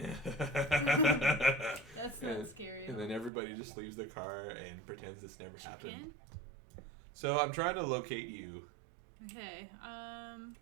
That's not scary. And then everybody just leaves the car and pretends this never happened. So I'm trying to locate you. Okay.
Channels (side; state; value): left; drops out; at 3.3 s